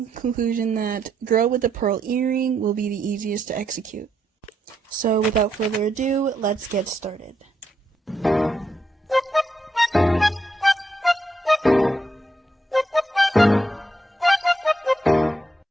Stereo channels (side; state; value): both; normal; correlation 0.79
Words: conclusion that Girl with the Pearl Earring will be the easiest to execute. So without further ado, let's get started.